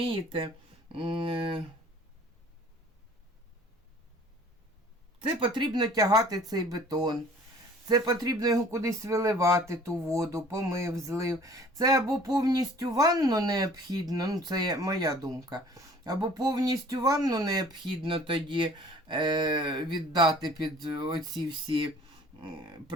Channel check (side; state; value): both; normal; correlation 0.51